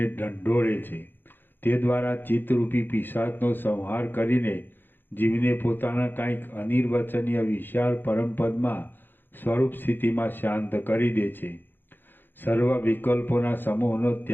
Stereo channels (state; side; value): late; right; 0.096 ms